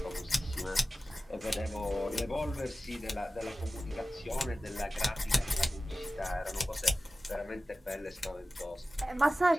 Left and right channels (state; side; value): normal; both; correlation 0.95